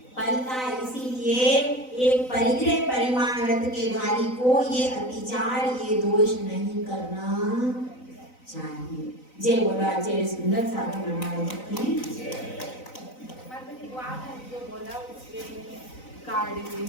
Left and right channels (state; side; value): late; right; 3.9 ms